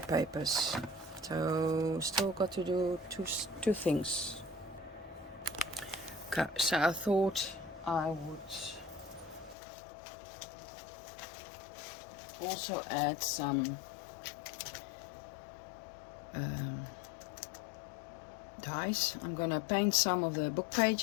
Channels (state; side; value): drops out; right; at 9.6 s